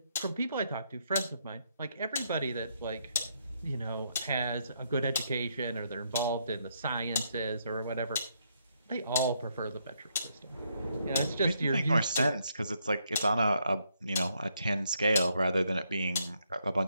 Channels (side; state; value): both; inverted; correlation -0.75